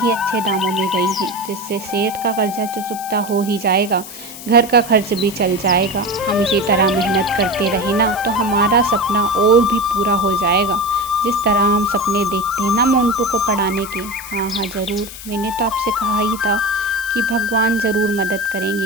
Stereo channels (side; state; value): left; noise; hiss, 13 dB below the sound